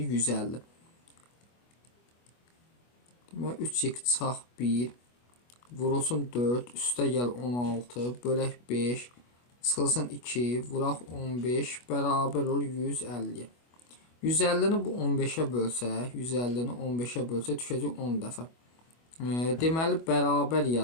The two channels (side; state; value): right; late; 25 ms